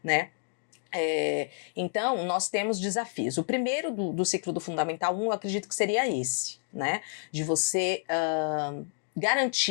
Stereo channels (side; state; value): right; silent; digital silence